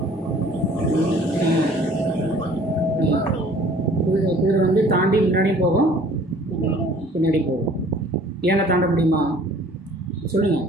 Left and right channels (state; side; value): normal; both; correlation 0.53